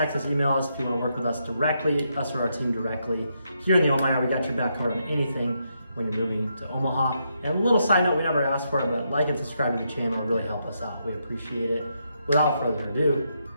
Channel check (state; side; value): inverted; both; correlation -0.80